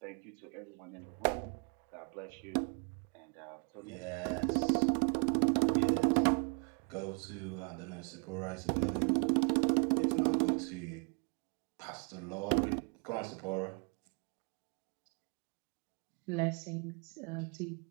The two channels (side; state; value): left; quieter; 37.5 dB